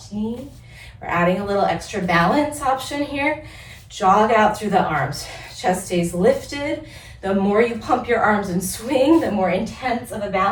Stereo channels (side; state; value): both; identical; correlation 1.00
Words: knee. We're adding a little extra balance option here. Jog out through the arms. Chest stays lifted. The more you pump your arms and swing, the more intense of a